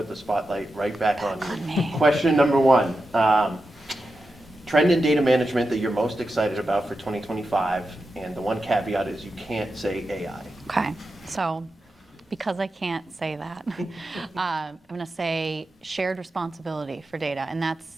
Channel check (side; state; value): both; normal; correlation 0.90